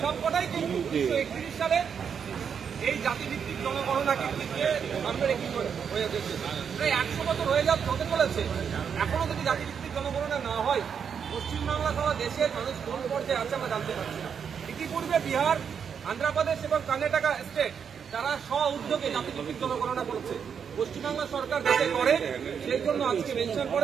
সবকটাই কিন্তু 1931 সালে এই জাতিভিত্তিক জনগণনাকে সামনে রেখে হয়ে গেছে। প্রায় 100 বছর হতে চলেছে, এখনো যদি জাতিভিত্তিক জনগণনা না হয় পশ্চিমবাংলা সহ দেশের মানুষ কোন পর্যায়ে আছে আমরা জানতে পারছি না। ইতিপূর্বে বিহার, আন্ধ্রপ্রদেশ এবং কর্ণাটকা স্টেট তারা স্ব উদ্যোগে জাতিভিত্তিক জনগণনা করেছে। পশ্চিমবাংলা সরকার যাতে করে সেই জন্য আজকে মেনশন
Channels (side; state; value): left; quieter; 7.1 dB